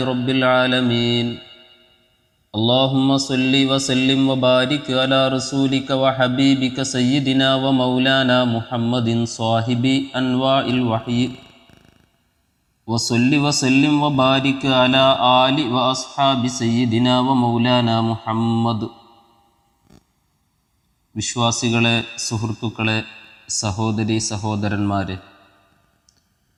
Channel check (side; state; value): both; identical; correlation 1.00